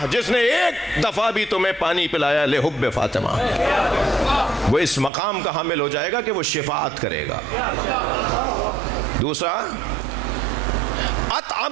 जिसने एक दफा भी तुम्हें पानी पिलाया, लिहुब्ब फातिमा, वो इस मकाम का हामिल हो जाएगा कि वो शिफाअत करेगा। दूसरा,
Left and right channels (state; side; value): drops out; left; at 5.1 s